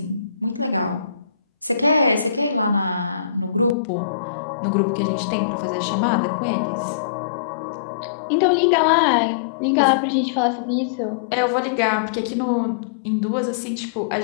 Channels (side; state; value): right; drops out; at 3.8 s